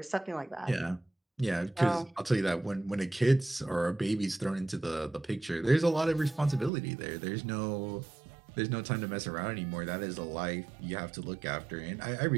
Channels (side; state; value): left; drops out; at 6.7 s